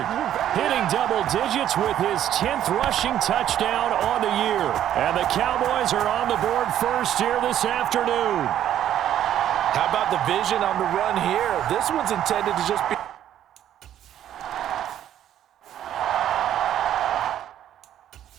hitting double digits with his 10th rushing touchdown on the year. And the Cowboys are on the board first here this afternoon. How about the vision on the run here? This one's intended to just be...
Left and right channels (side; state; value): left; quieter; 11.1 dB